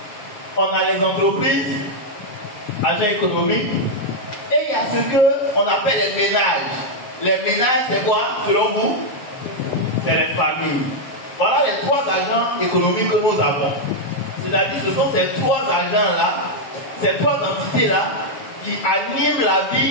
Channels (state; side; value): late; right; 7.5 ms